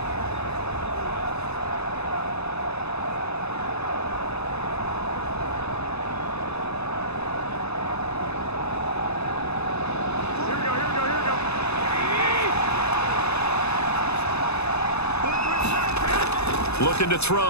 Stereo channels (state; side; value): late; right; 0.80 ms